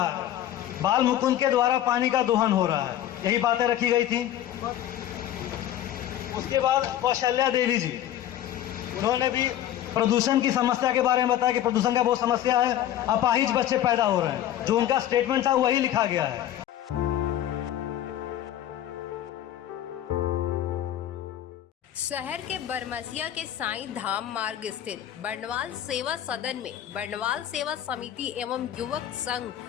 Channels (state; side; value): quieter; right; 11.8 dB